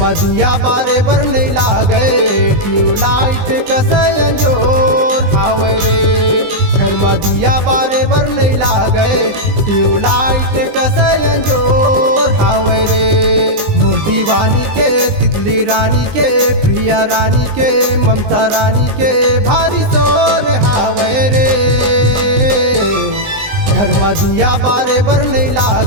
में दिया बारे बर नहीं लागे ट्यूबलाइट कसयन जोर हावे रे। घर में दिया बारे बर नहीं लागे ट्यूबलाइट कसयन जोर हावे रे। मोर दीवानी के तितली रानी के प्रिय रानी के ममता रानी के भारी शोर हावे रे। घर में दिया बारे बर नहीं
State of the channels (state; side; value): late; left; 20 ms